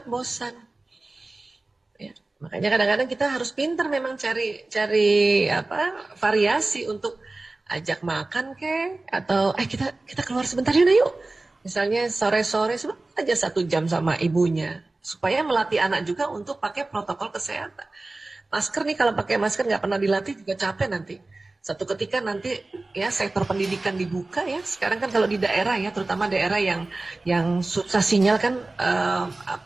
bosan. Ya. Makanya kadang-kadang kita harus pintar memang cari variasi untuk ajak makan atau kita keluar sebentar yuk. Misalnya sore-sore aja 1 jam sama ibunya. supaya melatih anak juga untuk pakai protokol kesehatan. Masker nih, kalau pakai masker nggak pernah dilatih juga capek nanti. Satu ketika nanti ya sektor pendidikan dibuka ya. Sekarang kan kalau di daerah ya, terutama daerah yang susah sinyal kan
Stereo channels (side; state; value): left; quieter; 3.1 dB